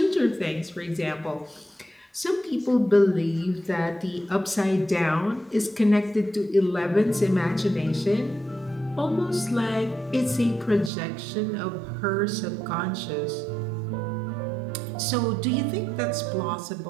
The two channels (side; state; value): left; drops out; at 10.9 s